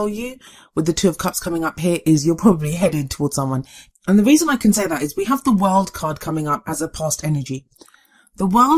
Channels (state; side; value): identical; both; correlation 1.00